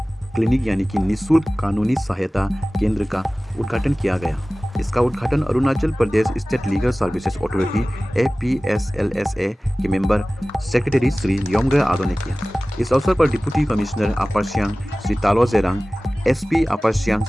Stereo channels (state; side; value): normal; both; correlation 0.98